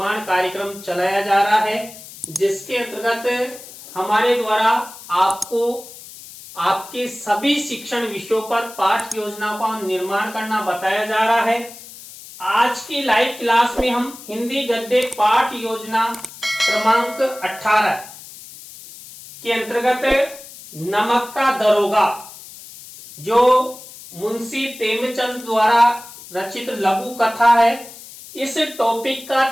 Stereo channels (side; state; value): left; noise; hiss, 17 dB below the sound